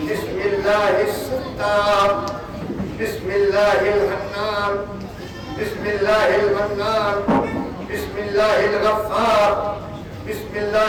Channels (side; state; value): both; identical; correlation 1.00